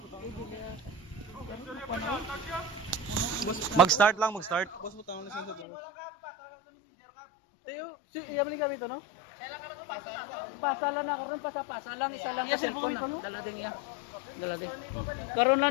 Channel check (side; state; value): right; drops out; at 5.7 s